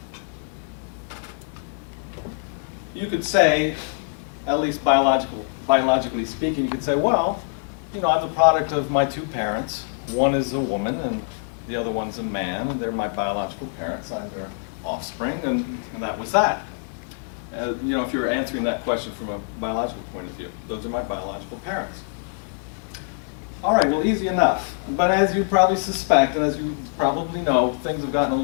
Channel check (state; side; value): silent; right; 62 dB below the other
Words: You could say, at least biologically speaking, you could say, well, you know, I'm the product of my 2 parents. One is a woman and the other one's a man, and they're my biological parents. I'm their offspring, and that was that. You know, if you're answering that question from a biological point of view, those are my biological parents. All right, well, easy enough. But as you probably suspect, and as you probably know, things have gotten a